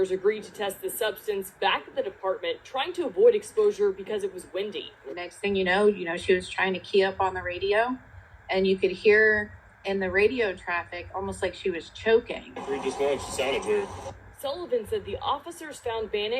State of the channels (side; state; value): both; identical; correlation 1.00